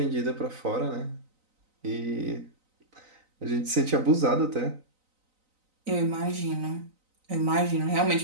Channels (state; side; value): late; left; 3.9 ms